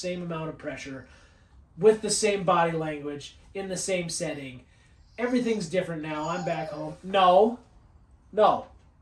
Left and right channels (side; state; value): both; identical; correlation 1.00